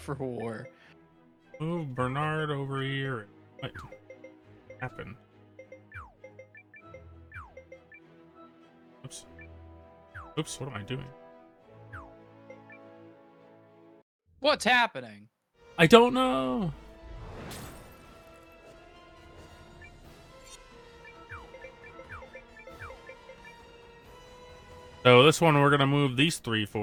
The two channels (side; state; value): both; identical; correlation 1.00